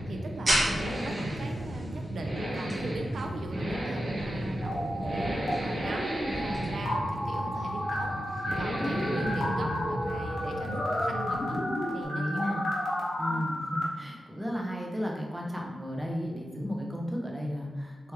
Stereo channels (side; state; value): both; normal; correlation 0.91